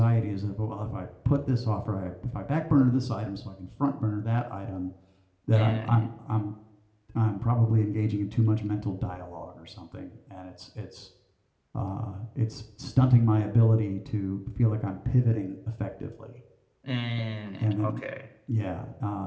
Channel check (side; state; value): both; identical; correlation 1.00